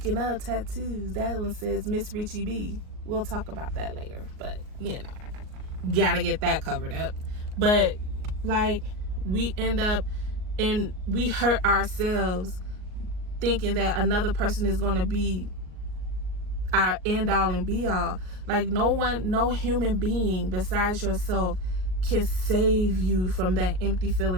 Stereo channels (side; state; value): left; late; 38 ms